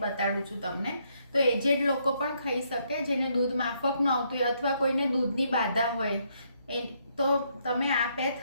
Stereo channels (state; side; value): inverted; both; correlation -0.73